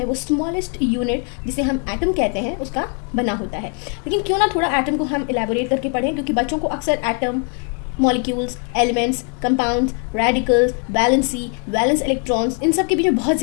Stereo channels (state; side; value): quieter; right; 39.7 dB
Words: वो स्मॉलेस्ट यूनिट जिसे हम एटम कहते हैं उसका बना होता है। लेकिन क्यों ना थोड़ा एटम को हम इलेबोरेट करके पढ़ें, क्योंकि बच्चों को अक्सर atom, molecules, elements, compounds, radicals, valence electrons, इन सब के बीच में बहुत